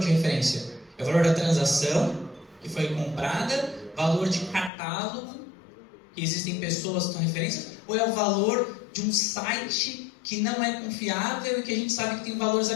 referência? É o valor da transação que foi comprada, valor de catálogo, que existem pessoas que são referências, ou é o valor de um site que não é confiável e que a gente sabe que tem valores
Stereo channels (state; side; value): drops out; right; at 4.7 s